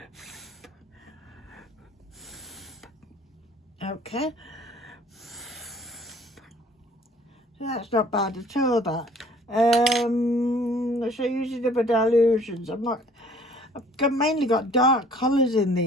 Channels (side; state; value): both; normal; correlation 0.55